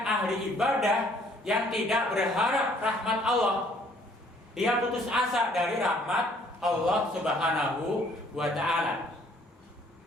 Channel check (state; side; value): normal; both; correlation 0.61